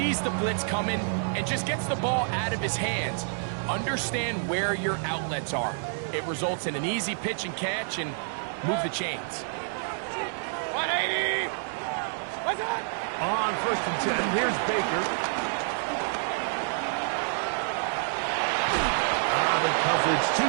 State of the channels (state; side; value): silent; left; digital silence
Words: the blitz coming and just gets the ball out of his hands. Understand where your outlets are. It results in an easy pitch and catch and move the chains. 180! What's that? On 1st and 10, here's Baker. The coverage too